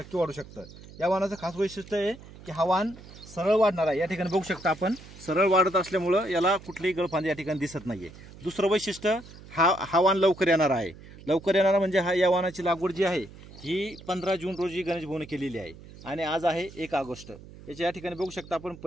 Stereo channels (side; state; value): right; noise; hum, 18 dB below the sound